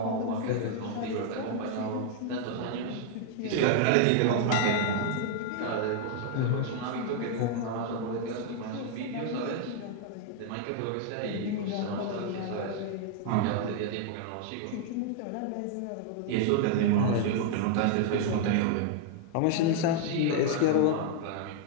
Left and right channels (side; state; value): both; different; correlation -0.01